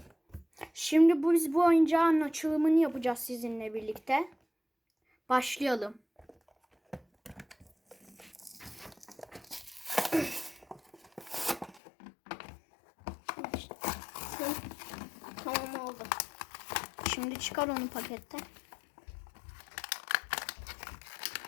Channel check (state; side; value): drops out; right; at 11.8 s